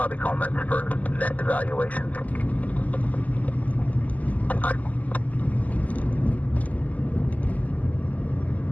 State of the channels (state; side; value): late; right; 0.076 ms